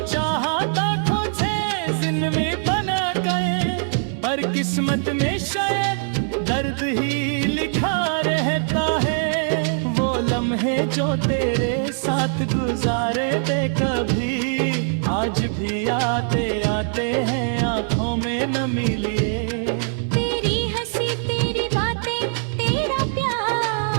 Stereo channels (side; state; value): left; silent; 64 dB below the other